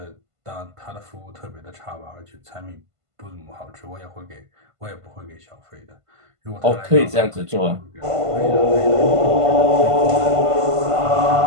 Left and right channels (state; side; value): late; left; 1.5 ms